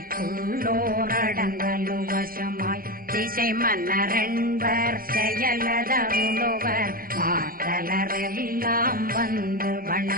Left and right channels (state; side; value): late; left; 0.42 ms